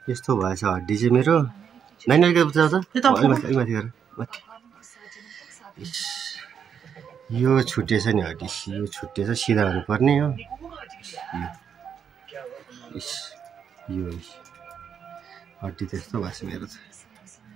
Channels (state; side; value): quieter; left; 7.6 dB